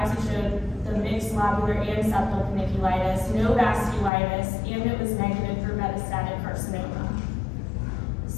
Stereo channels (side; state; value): right; drops out; at 4.1 s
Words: showed the mixed lobular and septal paniculitis, no vasculitis, and it was negative for metastatic carcinoma.